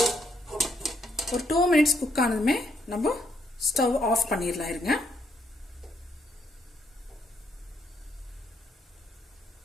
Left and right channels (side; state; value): both; normal; correlation 0.73